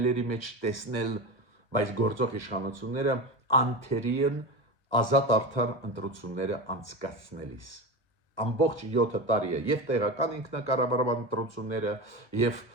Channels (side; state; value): right; late; 1.1 ms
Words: մեջ տեսնել բայց գործող իշխանությունները անթերի են ազատ արդար ընտրությունները անցկացնելիս ամբողջ 7 տարի է եւ տեղական ինքնակառավարման ընտրությունները եւ